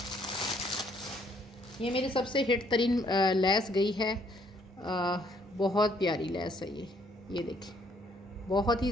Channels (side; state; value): both; normal; correlation 0.66